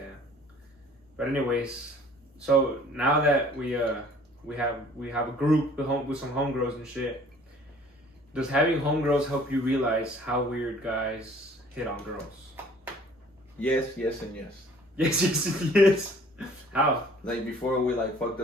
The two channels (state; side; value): normal; both; correlation 0.54